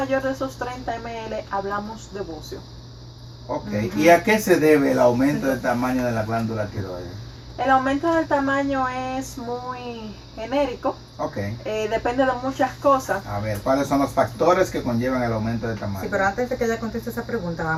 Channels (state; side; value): identical; both; correlation 1.00